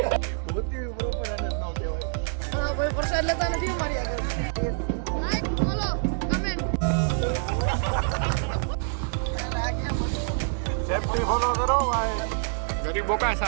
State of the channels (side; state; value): left; silent; 61 dB below the other